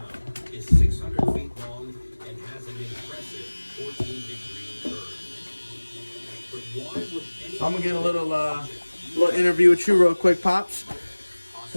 is 600 feet long and has an impressive 14-degree curve. But why would any I'm gonna get a little interview with you real quick, pops.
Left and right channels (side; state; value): both; inverted; correlation -1.00